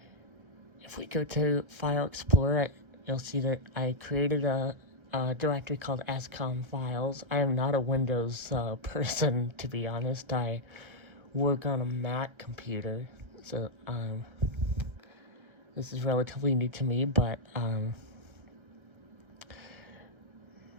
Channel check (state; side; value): late; left; 1.3 ms